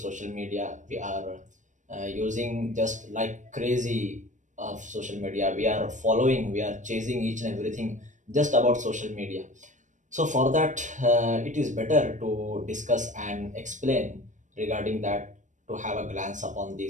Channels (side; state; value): left; late; 0.36 ms